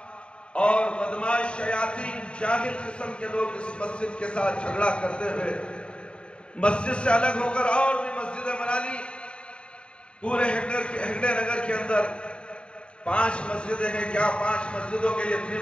اور بدماش شیاطین جاہل قسم کے لوگ اس مسجد کے ساتھ جھگڑا کرتے ہوئے مسجد سے الگ ہو کر اور بھی مسجدیں بنا لی۔ پورے ہنگڑے نگر کے اندر 5 مسجدیں ہیں۔ کیا 5 مسجدوں کے لیے اتنی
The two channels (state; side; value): late; right; 0.054 ms